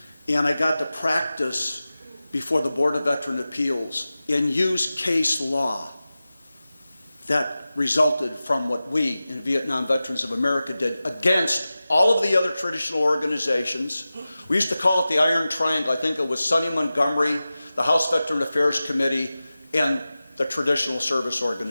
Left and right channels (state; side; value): inverted; both; correlation -0.95